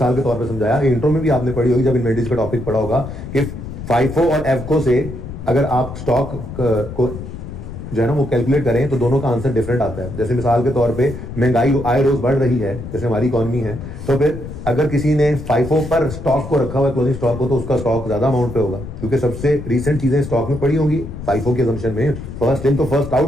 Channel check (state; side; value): noise; left; rumble, 10 dB below the sound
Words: के तौर पे समझाया, इंट्रो में भी आपने पढ़ी होगी जब इन्वेंटरीज का टॉपिक पढ़ा होगा, कि फाइफो और एफको से अगर आप स्टॉक को जो है ना वो कैलकुलेट करें तो दोनों का आंसर डिफरेंट आता है। जैसे मिसाल के तौर पे महंगाई आए रोज बढ़ रही है, जैसे हमारी इकॉनमी है, तो फिर अगर किसी ने फाइफो पर स्टॉक को रखा हुआ है, क्लोजिंग स्टॉक को, तो उसका स्टॉक ज्यादा अमाउंट पे होगा, क्योंकि सबसे रिसेंट चीजें स्टॉक में पड़ी होंगी फाइफो के असम्पशन में, फर्स्ट इन तो फर्स्ट